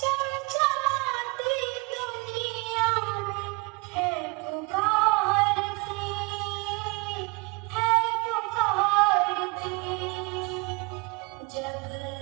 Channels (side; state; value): left; quieter; 28.6 dB